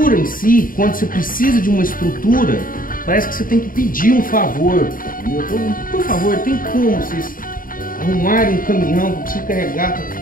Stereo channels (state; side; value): late; right; 0.40 ms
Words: em si, quando você precisa de uma estrutura, parece que você tem que pedir um favor. Entendeu? Por favor, tem como vocês arrumarem um caminhão para você carregar?